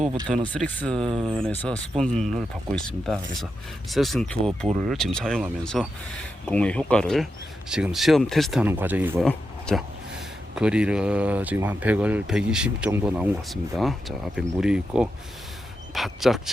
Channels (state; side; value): normal; both; correlation 0.87